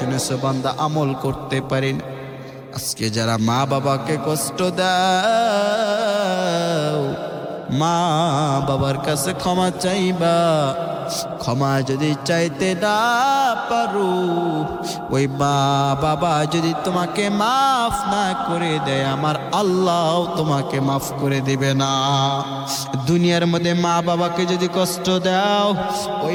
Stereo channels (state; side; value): identical; both; correlation 1.00